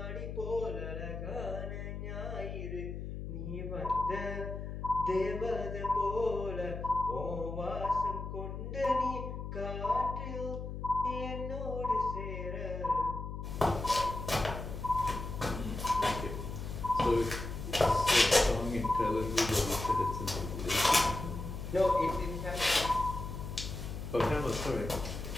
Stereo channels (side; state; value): left; noise; hum, 6 dB below the sound